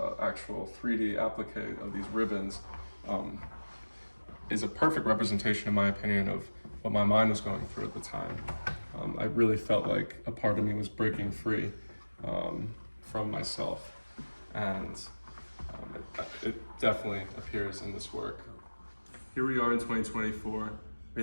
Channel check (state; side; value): inverted; both; correlation -1.00